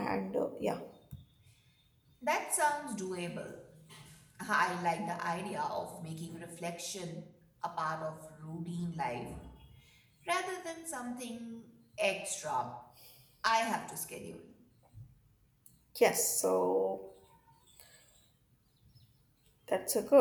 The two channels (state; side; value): identical; both; correlation 1.00